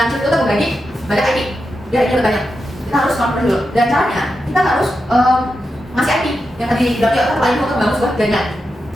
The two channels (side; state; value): both; normal; correlation 0.88